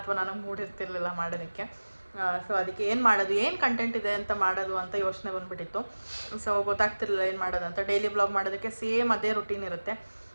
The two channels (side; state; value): both; inverted; correlation -1.00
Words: ನನಗೆ ಮೂಡ್ ಇರ್ತಿರ್ಲಿಲ್ಲ ಮಾಡೋದಕ್ಕೆ. ಸೊ ಅದಕ್ಕೆ ಏನು ಮಾಡೋದು, ಏನು ಕಂಟೆಂಟ್ ಇದೆ ಅಂತ ಮಾಡೋದು ಅಂತ ಯೋಚನೆ ಬಂದುಬಿಟ್ಟಿತ್ತು. ಸೊ ಗೊತ್ತಾಗ್ತಿರ್ಲಿಲ್ಲ ಏನು ಮಾಡೋದು ಅಂತ. ಡೈಲಿ ವ್ಲಾಗ್ ಮಾಡೋದಕ್ಕೆ ಸೇಮ್ ಅದೇ ರುಟೀನ್ ಇರುತ್ತೆ.